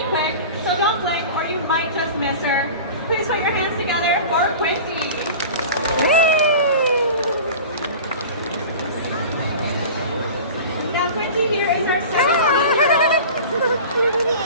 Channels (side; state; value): both; inverted; correlation -0.37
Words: quick, so don't blink or you might just miss her. Please put your hands together for Quincy. Now Quincy here is our second